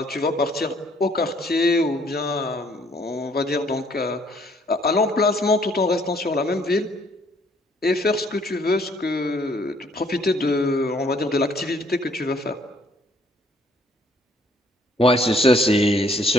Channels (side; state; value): both; normal; correlation 0.63